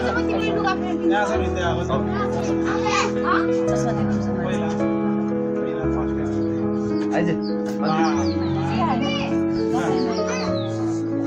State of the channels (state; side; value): identical; both; correlation 1.00